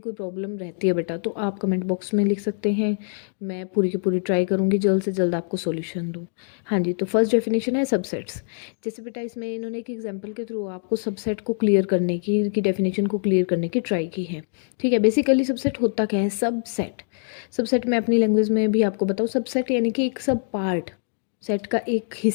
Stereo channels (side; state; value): right; silent; digital silence